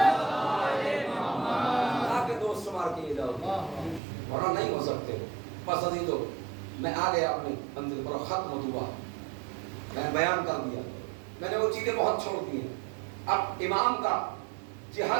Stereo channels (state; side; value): drops out; left; at 4.0 s